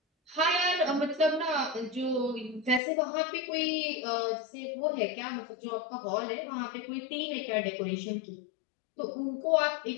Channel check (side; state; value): right; drops out; at 2.8 s